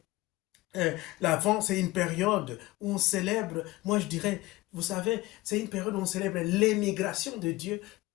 L'Avent, c'est une période où on célèbre, moi je dirais, vous savez, c'est une période où on célèbre l'émigration de Dieu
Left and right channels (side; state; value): right; quieter; 19.7 dB